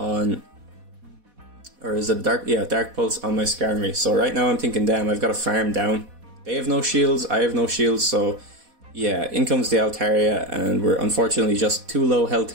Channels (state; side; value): late; left; 4.1 ms